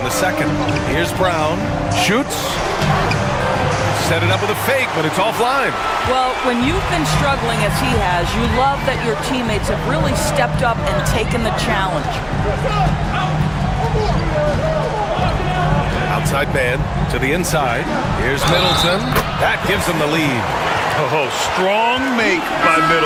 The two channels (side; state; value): both; identical; correlation 1.00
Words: the second. Here's Brown. Shoots. Set it up with a fake, but it's offline. Well, when you've been struggling as he has, you love that your teammates have really stepped up and taken the challenge. Outside man to the inside. Here's Middleton. That gives them the lead. Oh, strong make by